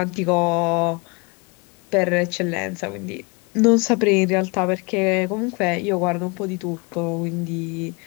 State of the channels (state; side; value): quieter; right; 29.7 dB